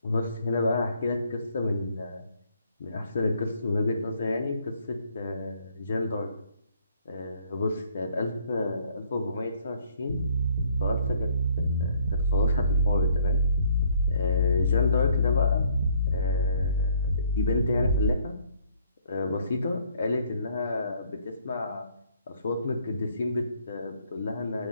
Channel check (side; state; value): both; inverted; correlation -0.64